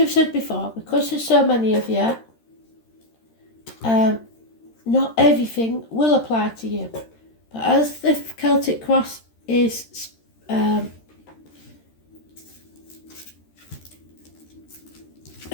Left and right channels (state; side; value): late; right; 13 ms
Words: said before, because there's so many of you, not everything will apply to you. But as the Celtic cross is